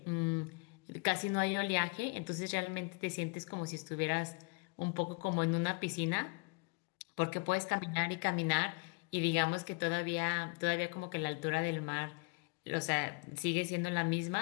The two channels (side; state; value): right; quieter; 32.0 dB